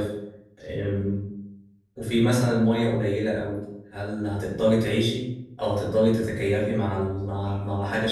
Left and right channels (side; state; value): both; identical; correlation 1.00